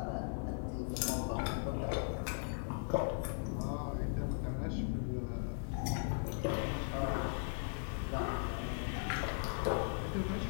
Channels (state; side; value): silent; right; digital silence